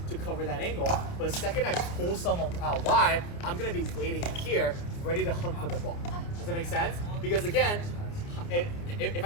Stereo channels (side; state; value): right; late; 29 ms